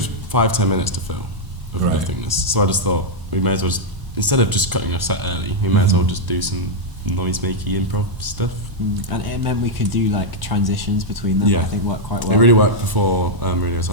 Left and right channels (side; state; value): left; late; 1.0 ms